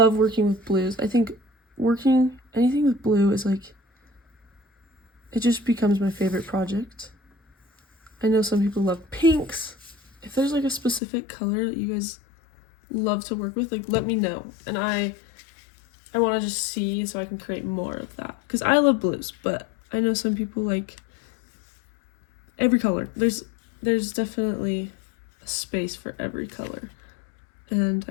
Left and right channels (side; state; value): right; drops out; at 11.0 s